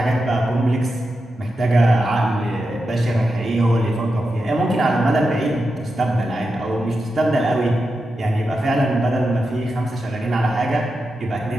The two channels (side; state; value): both; normal; correlation 0.89